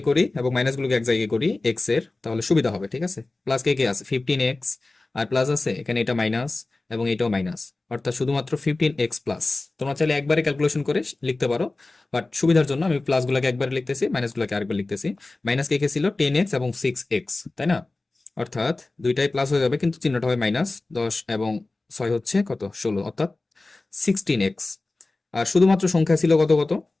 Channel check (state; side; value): quieter; right; 3.2 dB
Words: করি এবং মাইনাস গুলোকে এক জায়গায় করি এক্স এর, তাহলে সুবিধা হবে, ঠিক আছে? প্লাস কে আছে 15x, আর প্লাস আছে এখানে এটা মাইনাস এবং এটাও মাইনাস, অর্থাৎ শুধুমাত্র 15x প্লাস। তোমরা চাইলে একবারে ক্যালকুলেশন করে লিখতে পারো, বাট সুবিধার জন্য আমি প্লাস গুলোকে একবারে লিখতেছি, মাইনাস গুলোকে আরেকবার লিখতেছি। মাইনাস কে ছিল 10x এবং 6x, তাই না? অর্থাৎ দুইটাই প্লাস হয়ে যাবে, কিন্তু চিহ্নটা হবে মাইনাস। 10 এবং 6 হচ্ছে কত? 16, অর্থাৎ 16x। আর শুধুমাত্র সংখ্যা ছিল কত কত?